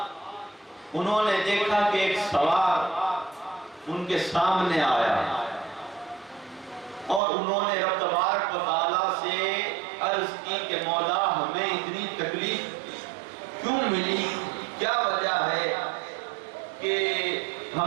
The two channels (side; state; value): left; drops out; at 7.2 s